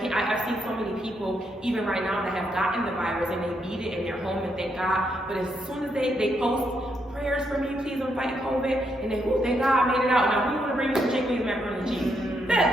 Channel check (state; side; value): normal; both; correlation 0.78